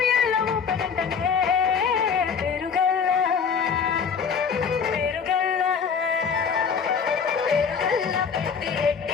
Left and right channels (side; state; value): right; quieter; 6.3 dB